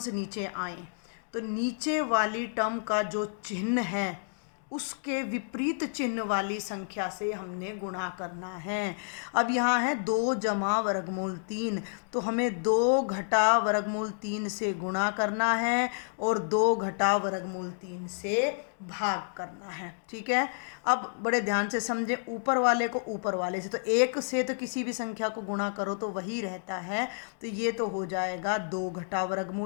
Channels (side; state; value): right; silent; digital silence